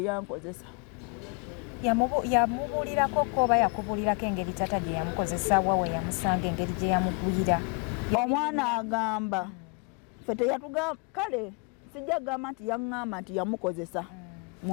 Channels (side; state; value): right; quieter; 33.8 dB